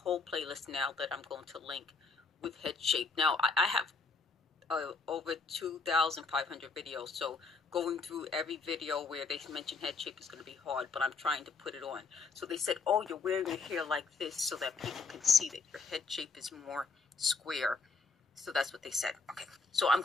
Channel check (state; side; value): quieter; right; 4.2 dB